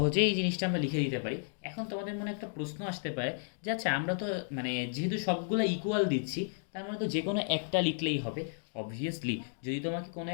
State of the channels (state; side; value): silent; right; digital silence